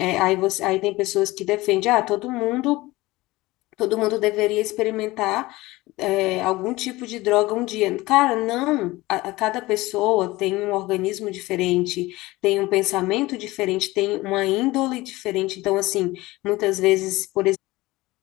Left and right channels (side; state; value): right; quieter; 19.7 dB